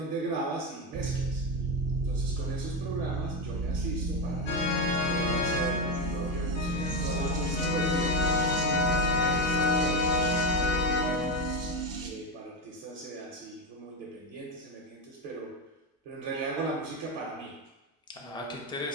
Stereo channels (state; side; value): normal; both; correlation 0.13